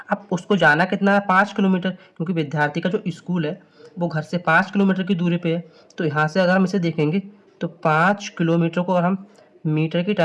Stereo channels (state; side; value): identical; both; correlation 1.00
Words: अब उसको जाना कितना है? 5 किलोमीटर, क्योंकि विद्यार्थी का जो स्कूल है वो घर से 5 किलोमीटर की दूरी पे है। तो यहाँ से अगर हम इसे देखेंगे तो 5 किलोमीटर को अगर हम मीटर की